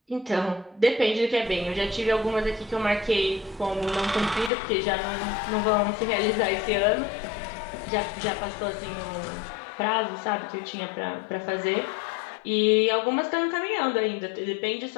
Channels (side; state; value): right; drops out; at 4.5 s